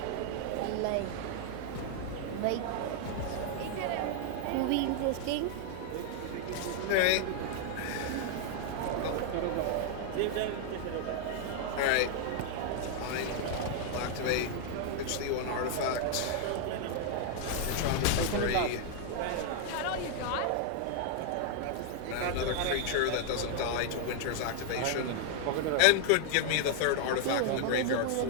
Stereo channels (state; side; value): different; both; correlation 0.00